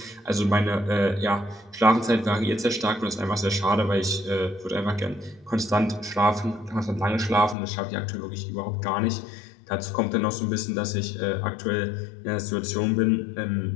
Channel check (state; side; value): drops out; right; at 7.6 s